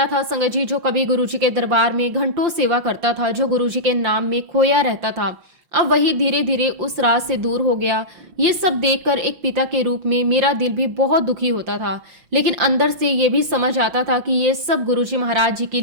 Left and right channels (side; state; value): left; late; 5.7 ms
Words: था संगत जी जो कभी गुरुजी के दरबार में घंटों सेवा करता था, जो गुरुजी के नाम में खोया रहता था, अब वही धीरे धीरे उस राह से दूर हो गया। ये सब देखकर एक पिता के रूप में मेरा दिल भी बहुत दुखी होता था, लेकिन अंदर से ये भी समझ आता था कि ये सब गुरुजी महाराज जी की